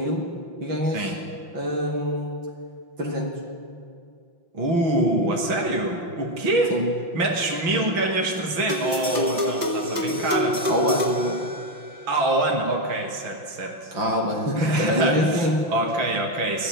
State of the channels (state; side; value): late; left; 5.8 ms